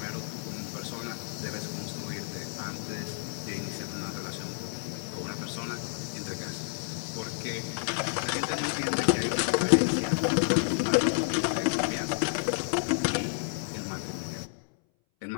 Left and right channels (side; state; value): right; silent; 58 dB below the other